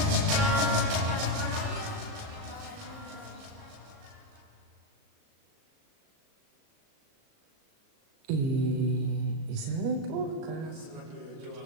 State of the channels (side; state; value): left; late; 38 ms